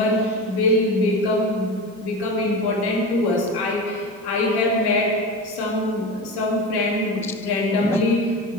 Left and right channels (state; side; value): normal; both; correlation 0.26